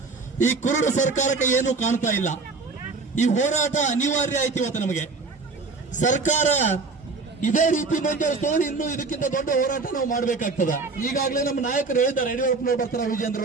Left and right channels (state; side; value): quieter; left; 4.0 dB